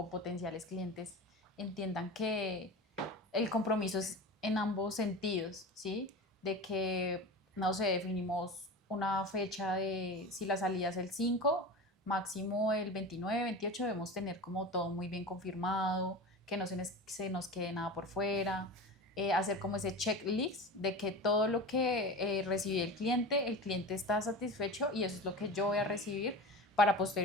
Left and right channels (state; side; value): normal; both; correlation 0.30